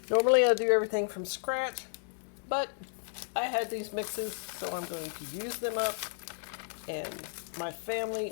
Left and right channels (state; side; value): silent; right; digital silence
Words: Normally I do everything from scratch, but I had these mixes, so I'm going to use them up, and my family